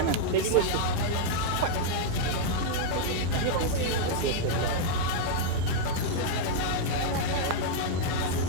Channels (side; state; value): both; different; correlation -0.01